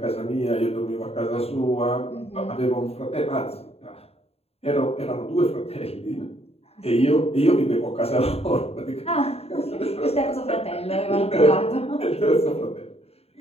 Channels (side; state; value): right; late; 0.29 ms